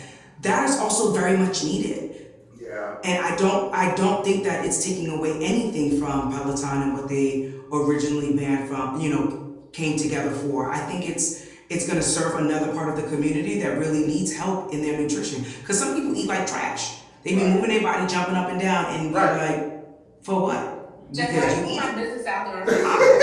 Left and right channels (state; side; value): identical; both; correlation 1.00